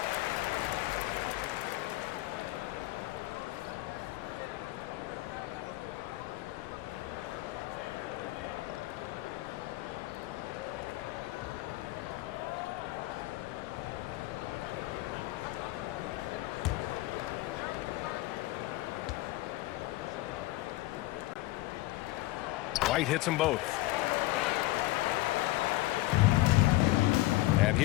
White hits them both. And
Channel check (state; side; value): quieter; right; 18.2 dB